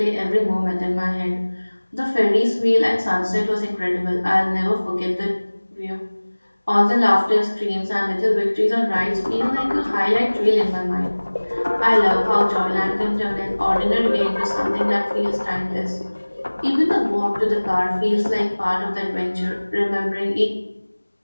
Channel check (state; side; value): inverted; both; correlation -1.00